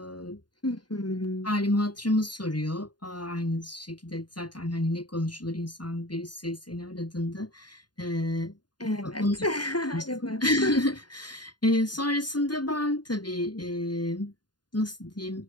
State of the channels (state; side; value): late; right; 0.70 ms